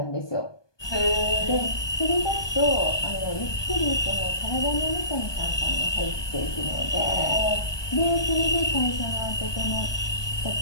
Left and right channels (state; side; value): late; right; 1.2 ms